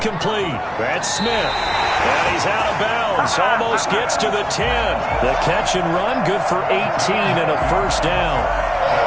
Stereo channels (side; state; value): both; identical; correlation 1.00